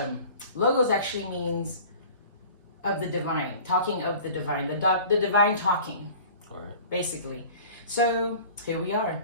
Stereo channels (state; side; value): inverted; both; correlation -0.43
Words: logos actually means of the divine, talking of the divine, the divine talking, All right. basically. So here we are,